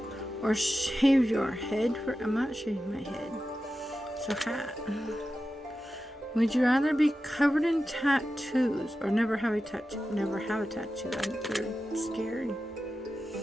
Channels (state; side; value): normal; both; correlation 0.92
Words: or shave your head for? I'm not shaving my head. So hat. Would you rather be covered in tattoos or never have a tattoo? Never have a tattoo. I think they're scary.